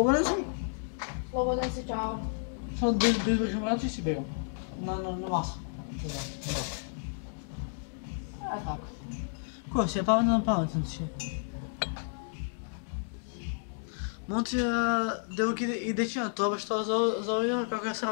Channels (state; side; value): silent; right; digital silence